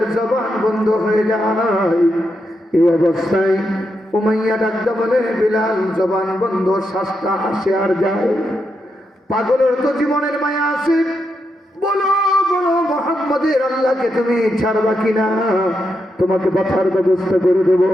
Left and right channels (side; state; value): both; normal; correlation 0.83